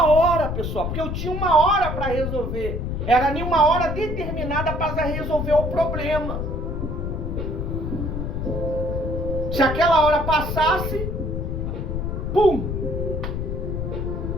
hora, pessoal, porque eu tinha uma hora para resolver. Era nenhuma hora determinada para resolver o problema. Se aquela hora passasse, pum!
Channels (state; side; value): noise; left; rumble, 3 dB below the sound